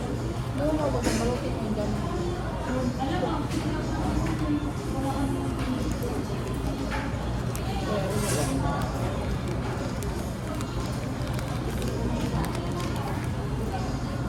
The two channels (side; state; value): both; identical; correlation 1.00